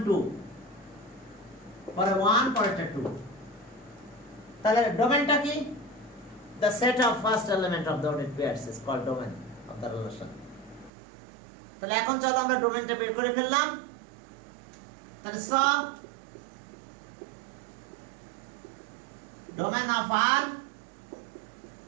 2, পরে 1, পরেরটা 2। তাহলে ডোমেনটা কি? The set of first element of the ordered pairs is called domain of the relation। তাহলে এখন চলো আমরা ডোমেনটা বের করে ফেললাম। তাহলে domain of R,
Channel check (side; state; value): left; drops out; at 10.9 s